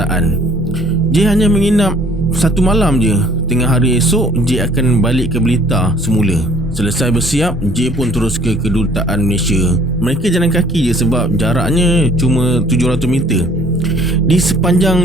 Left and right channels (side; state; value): both; normal; correlation 0.57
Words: J hanya menginap 1 malam je. Tengah hari esok, J akan balik ke Blitar semula. Selesai bersiap, J pun terus ke kedutaan Malaysia. Mereka jalan kaki je sebab jaraknya cuma 700 meter. Di